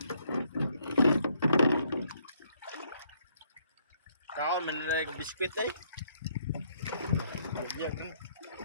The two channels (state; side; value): inverted; both; correlation -0.69